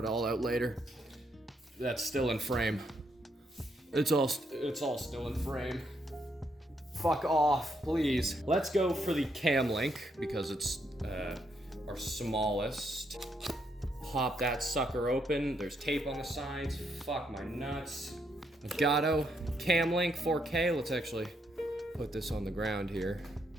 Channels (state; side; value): normal; both; correlation 0.76